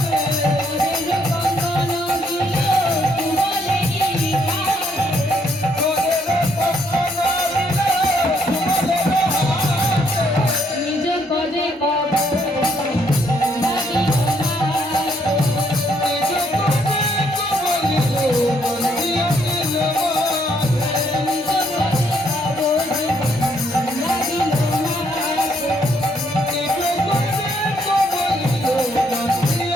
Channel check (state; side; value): normal; both; correlation 0.71